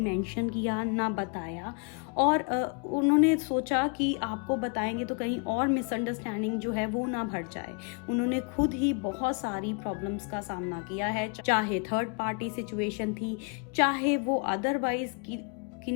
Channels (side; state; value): right; quieter; 35.9 dB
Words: किया ना बताया, और उन्होंने सोचा कि आपको बताएंगे तो कहीं और मिसअंडरस्टैंडिंग जो है वो ना बढ़ जाए। उन्होंने खुद ही बहुत सारी प्रॉब्लम्स का सामना किया है, चाहे थर्ड पार्टी सिचुएशन थी, चाहे वो अदरवाइज की